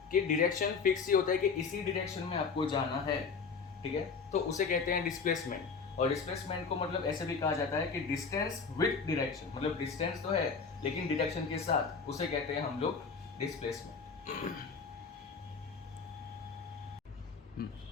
कि डायरेक्शन फिक्स ही होता है कि इसी डायरेक्शन में आपको जाना है, ठीक है। तो उसे कहते हैं डिस्प्लेसमेंट। और डिस्प्लेसमेंट को मतलब ऐसे भी कहा जाता है कि डिस्टेंस विद डायरेक्शन, मतलब डिस्टेंस तो है लेकिन डायरेक्शन के साथ, उसे कहते हैं हम लोग डिस्प्लेसमेंट।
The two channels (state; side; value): quieter; right; 5.3 dB